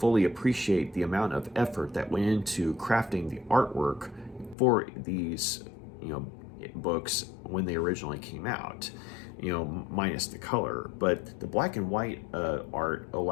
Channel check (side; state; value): right; drops out; at 4.5 s